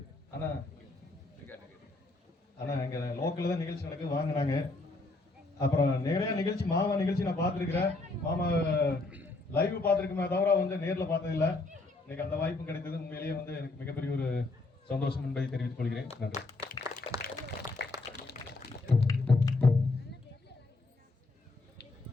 ஆனா இங்க லோக்கல்ல தான் நிகழ்ச்சி நடக்குது வாங்கினாங்க. அப்புறம் நிறைய நிகழ்ச்சி மாமா நிகழ்ச்சி நான் பார்த்துருக்கிறேன். மாமா லைவ் பார்த்துருக்குமே தவிர வந்து நேர்ல பார்த்தது இல்லை. இன்னைக்கு அந்த வாய்ப்பும் கிடைத்தது. உண்மையிலேயே வந்து எனக்கு மிகப்பெரிய ஒரு சந்தோஷம் என்பதை தெரிவித்துக் கொள்கிறேன். நன்றி.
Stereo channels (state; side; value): quieter; right; 3.2 dB